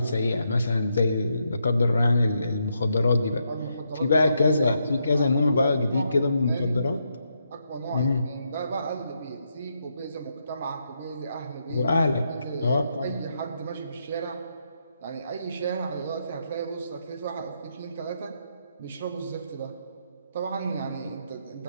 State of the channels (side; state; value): both; inverted; correlation -0.80